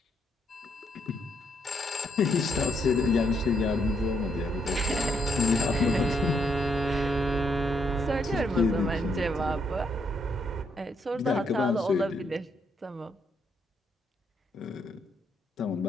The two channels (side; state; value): both; normal; correlation 0.75